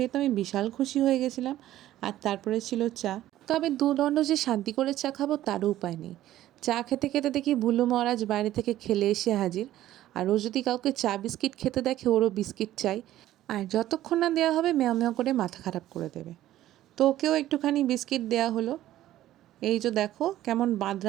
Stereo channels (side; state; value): left; quieter; 13.8 dB